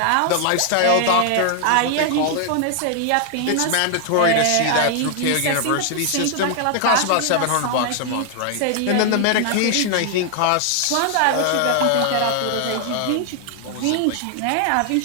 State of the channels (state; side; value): different; both; correlation 0.00